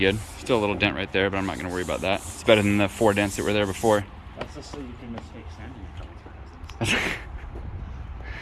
Still a little dent right there, but I'm not going to worry about that. It's better than the 4 dents that were there before. That's just so you can mistake sanding a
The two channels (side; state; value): both; identical; correlation 1.00